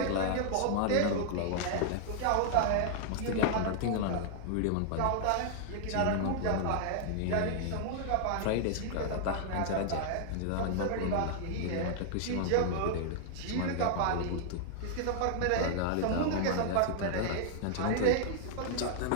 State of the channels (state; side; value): different; both; correlation -0.01